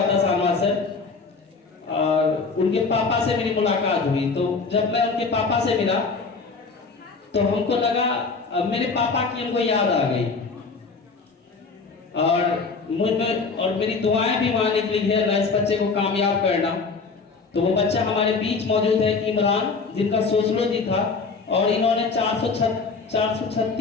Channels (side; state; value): right; quieter; 4.5 dB